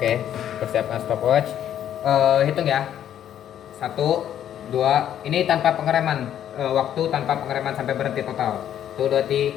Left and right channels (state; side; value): quieter; right; 10.4 dB